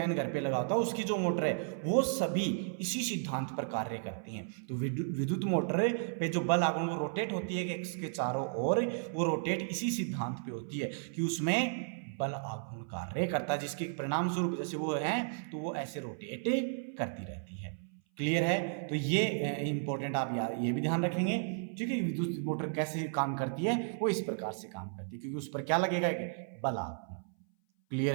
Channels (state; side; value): silent; left; 55 dB below the other